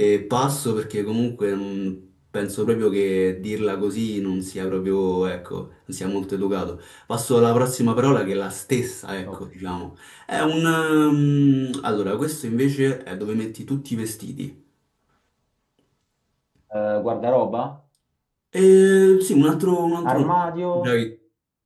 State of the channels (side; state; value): both; identical; correlation 1.00